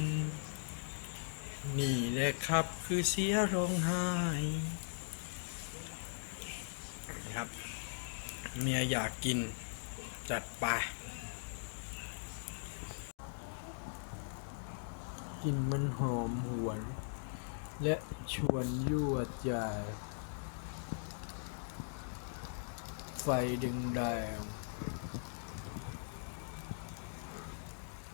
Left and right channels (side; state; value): right; silent; digital silence